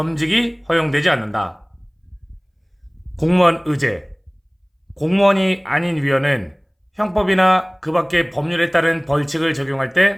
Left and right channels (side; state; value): both; identical; correlation 1.00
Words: 허용되지 않는다. 공무원 의제, 공무원이 아닌 위원은 형법이나 그 밖의 법률에 따른 벌칙을 적용할